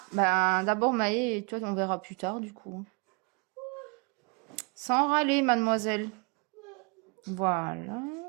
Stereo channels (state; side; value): quieter; left; 30.8 dB